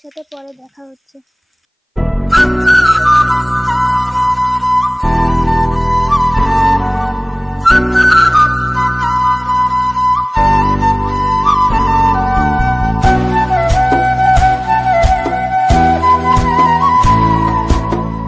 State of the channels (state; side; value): identical; both; correlation 1.00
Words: সাথে পরে দেখা হচ্ছে।